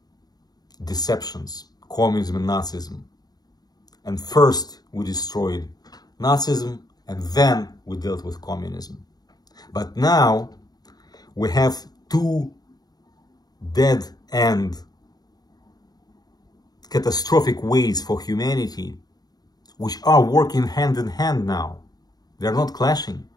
deceptions, communism and Nazism. And first we destroyed Nazism, and then we dealt with communism. But now we have two dead-end catastrophic ways for humanity which are working hand in hand now. They're not clashing.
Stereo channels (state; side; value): late; right; 0.19 ms